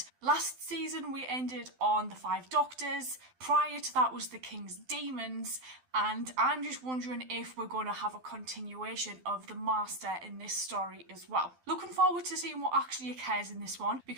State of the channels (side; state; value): left; late; 12 ms